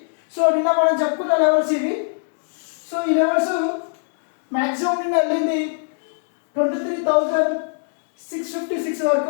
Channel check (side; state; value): right; silent; digital silence